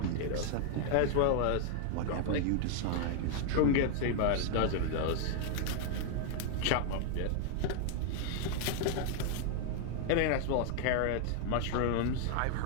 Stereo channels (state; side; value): different; both; correlation 0.00